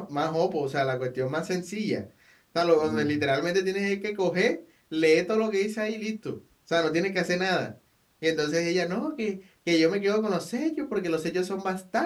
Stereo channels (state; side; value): identical; both; correlation 1.00